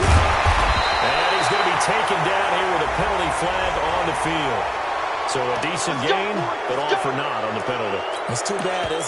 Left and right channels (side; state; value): both; identical; correlation 1.00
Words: he's going to be taken down here with a penalty flag on the field. So a decent gain, but all for naught on the penalty. It's too bad,